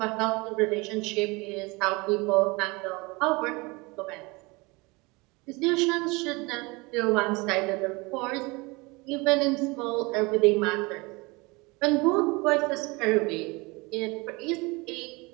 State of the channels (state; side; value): quieter; left; 25.5 dB